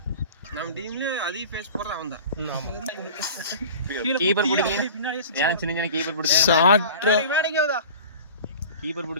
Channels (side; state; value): both; inverted; correlation -0.39